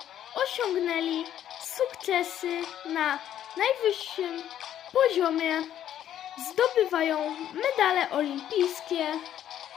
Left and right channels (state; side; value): quieter; right; 10.9 dB